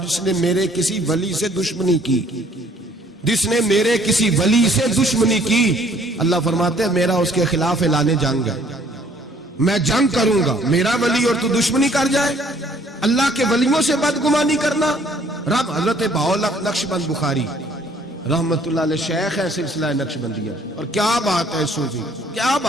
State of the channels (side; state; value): both; normal; correlation 0.60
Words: جس نے میرے کسی ولی سے دشمنی کی، جس نے میرے کسی ولی سے دشمنی کی، اللہ فرماتے ہیں میرا اس کے خلاف اعلان جنگ ہے، میں جنگ کروں گا۔ میرا ولی اور تو دشمنی کر جائے، اللہ کے ولیوں سے بدگمانی کرنا۔ رب حضرت بہاءاللہ نقشبند بخاری رحمت اللہ علیہ شیخ ہے سلسلہ نقشبندیہ، اور کیا بات ہے صوفی، کیا